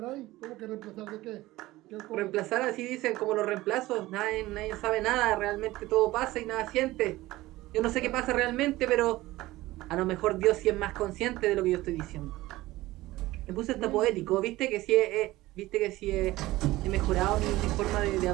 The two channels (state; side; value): quieter; left; 17.9 dB